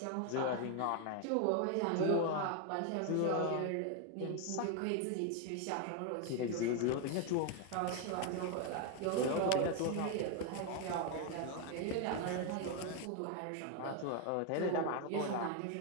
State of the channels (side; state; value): both; different; correlation 0.01